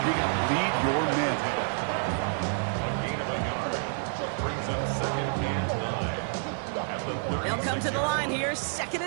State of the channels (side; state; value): left; silent; 59 dB below the other